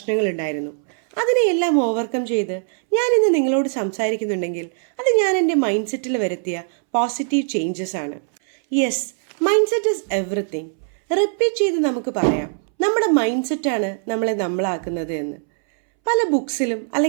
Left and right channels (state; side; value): silent; left; 65 dB below the other